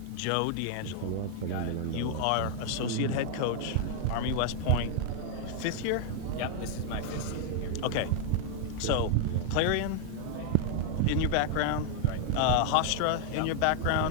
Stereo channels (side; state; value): both; different; correlation 0.00